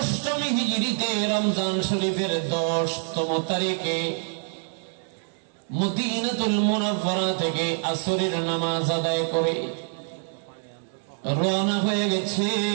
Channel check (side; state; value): left; silent; digital silence